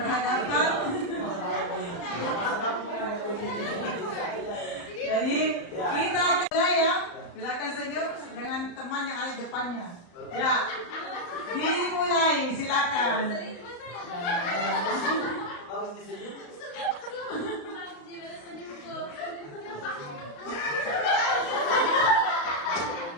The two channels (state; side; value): late; right; 35 ms